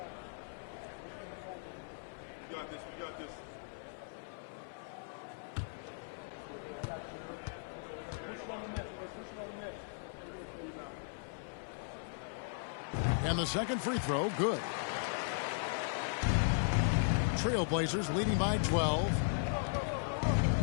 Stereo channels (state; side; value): silent; right; digital silence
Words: And the second free throw, good. Trailblazers leading by 12.